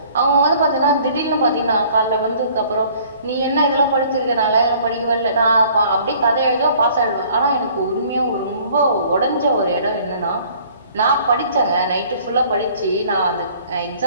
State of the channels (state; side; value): inverted; both; correlation -0.55